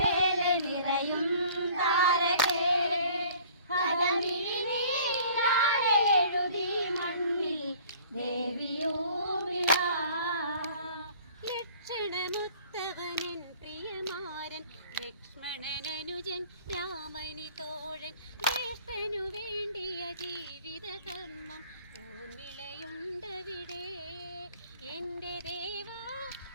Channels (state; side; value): inverted; both; correlation -0.52